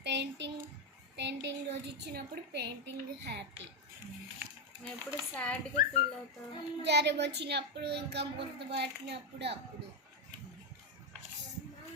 రోజు ఇచ్చినప్పుడు painting happy. ఎప్పుడు సాడ్గా feel అవుతావు? జ్వరం వచ్చినప్పుడు ఇంకా గుర్తుపట్టినప్పుడు అప్పుడు.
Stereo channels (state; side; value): normal; both; correlation 0.05